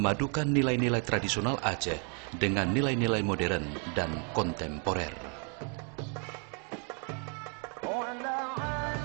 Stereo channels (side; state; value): left; quieter; 39.1 dB